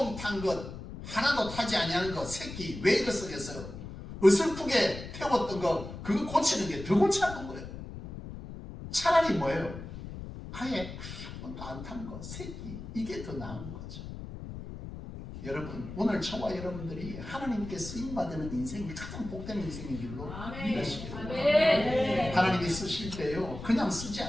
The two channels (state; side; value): noise; left; rumble, 10 dB below the sound